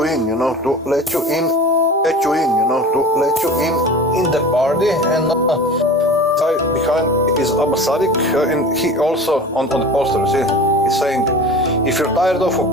in, you know, to let you in, in the party. And behind is Abba Sadiq, and he also on the poster, see, he's saying, if you're tired of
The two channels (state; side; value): normal; both; correlation 0.37